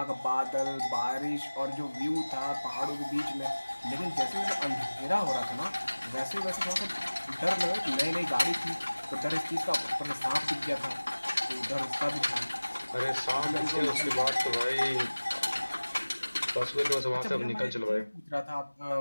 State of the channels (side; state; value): both; inverted; correlation -1.00